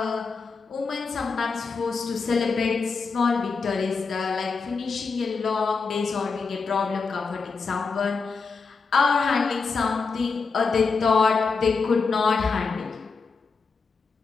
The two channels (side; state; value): right; quieter; 4.8 dB